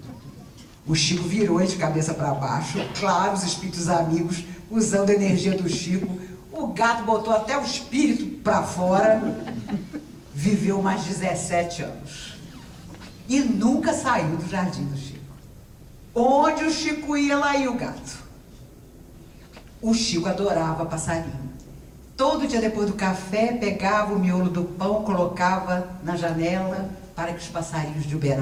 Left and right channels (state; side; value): identical; both; correlation 1.00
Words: O Chico virou ele de cabeça para baixo, claro, os espíritos amigos usando a energia do Chico, o gato botou até o espírito para fora, viveu mais 17 anos e nunca saiu do jardim do Chico. Onde o Chico ia, lá ia o gato. O Chico adorava passarinho. Todo dia depois do café, pegava o miolo do pão, colocava na janela para que os passarinhos de